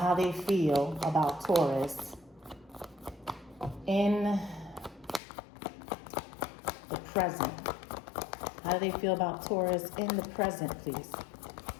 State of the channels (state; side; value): drops out; right; at 5.2 s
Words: they feel about Taurus in the present. How do they feel about Taurus in the present, please?